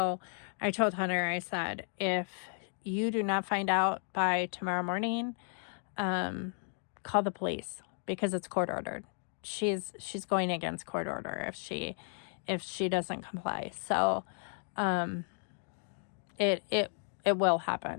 I told Hunter, I said, if you do not find out by tomorrow morning, call the police, because it's court ordered. She's going against court order if she doesn't comply. So it will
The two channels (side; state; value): right; silent; 55 dB below the other